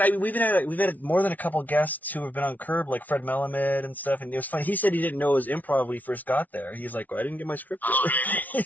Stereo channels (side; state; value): right; late; 0.077 ms